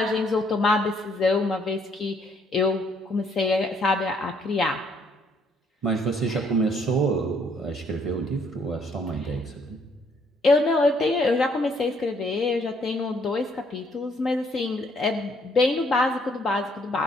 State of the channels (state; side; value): normal; both; correlation 0.67